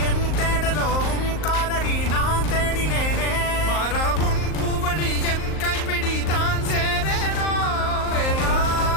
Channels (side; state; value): right; late; 38 ms